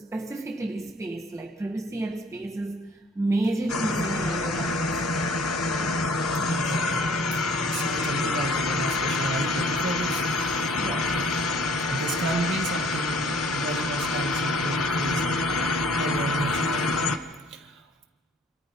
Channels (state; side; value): normal; both; correlation 0.56